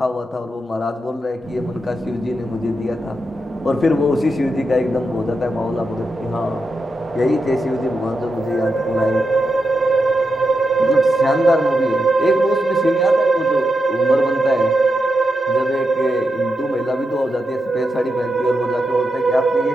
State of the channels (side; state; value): both; normal; correlation 0.87